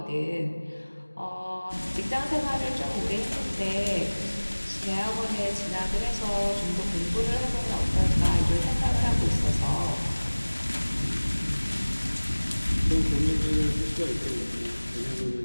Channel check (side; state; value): both; inverted; correlation -1.00